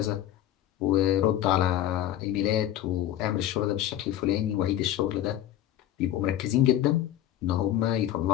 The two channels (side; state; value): right; quieter; 12.3 dB